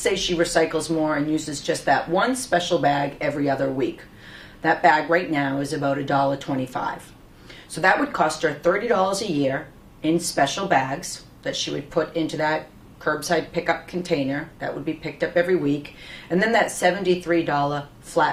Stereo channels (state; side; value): identical; both; correlation 1.00